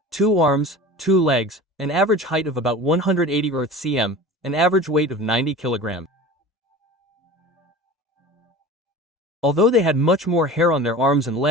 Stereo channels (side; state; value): both; normal; correlation 0.37